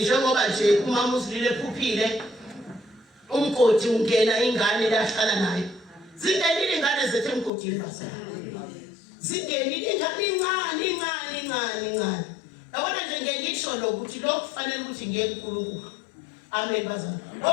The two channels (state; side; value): drops out; right; at 7.5 s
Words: Njengoba nje umama uzilile ephuphile umgodi ungena ingane lahlala nayo. Zingenile ingane zethu emgodini bazalwane. Zingenile ingane incane. Yabona nje ngisho lokuthi lo kufanele ukuthi ngeke uNkulunkulu. Amen bazalwane.